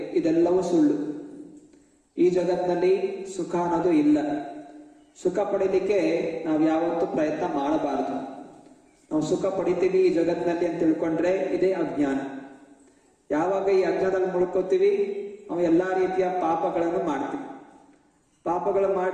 ಇದೆಲ್ಲವೂ ಸುಳ್ಳು. ಈ ಜಗತ್ತಿನಲ್ಲಿ ಸುಖ ಅನ್ನೋದು ಇಲ್ಲ. ಸುಖ ಪಡೀಲಿಕ್ಕೆ ನಾವು ಯಾವತ್ತೂ ಪ್ರಯತ್ನ ಮಾಡಬಾರದು. ನಾವು ಸುಖ ಪಡಿತೀವಿ ಈ ಜಗತ್ತಿನಲ್ಲಿ ಅಂತ ತಿಳ್ಕೊಂಡ್ರೆ ಇದೇ ಅಜ್ಞಾನ. ಯಾವಾಗ ಈ ಅಜ್ಞಾನದಲ್ಲಿ ಮುಳ್ಕೋತೀವಿ ನಾವು ಎಲ್ಲಾ ರೀತಿಯ ಪಾಪಗಳನ್ನು ಮಾಡ್ತೀವಿ. ಪಾಪಗಳು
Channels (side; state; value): both; identical; correlation 1.00